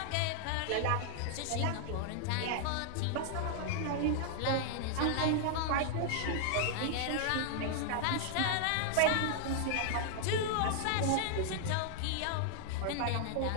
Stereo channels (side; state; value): both; different; correlation -0.01